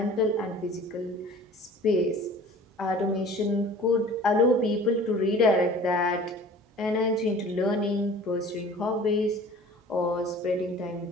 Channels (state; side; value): normal; both; correlation 0.45